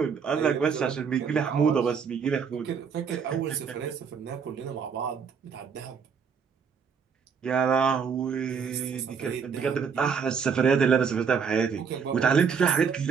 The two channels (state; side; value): quieter; left; 6.3 dB